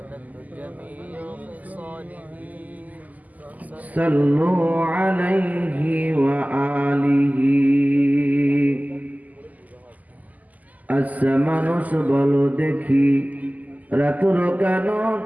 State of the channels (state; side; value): late; left; 0.079 ms